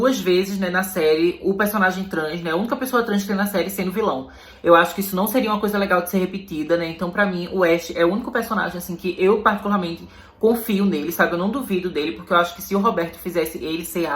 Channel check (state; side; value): identical; both; correlation 1.00